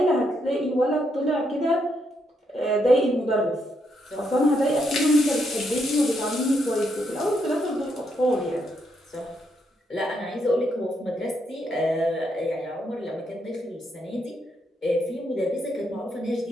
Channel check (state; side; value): normal; both; correlation 0.78